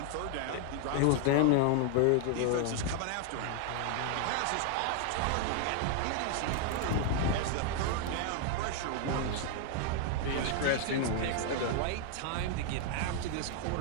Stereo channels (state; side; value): different; both; correlation 0.00